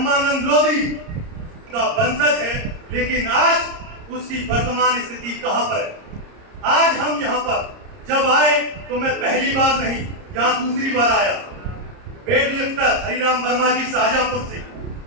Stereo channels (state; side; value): late; left; 30 ms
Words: लोधी का वंशज है, लेकिन आज उसकी वर्तमान स्थिति कहां पर है? आज हम यहाँ पर जब आए तो मैं पहली बार नहीं, यहाँ दूसरी बार आया। वेट लिफ्टर हरिराम वर्मा जी शाहजहांपुर से